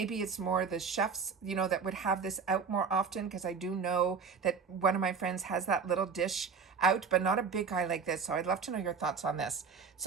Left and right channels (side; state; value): left; quieter; 5.7 dB